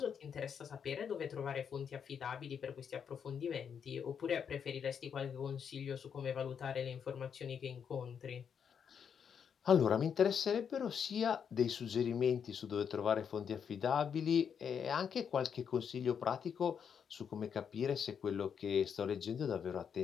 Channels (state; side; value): quieter; right; 7.4 dB